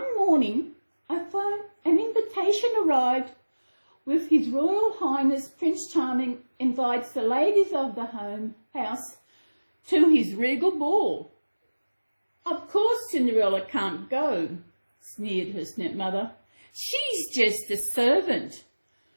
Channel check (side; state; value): both; inverted; correlation -1.00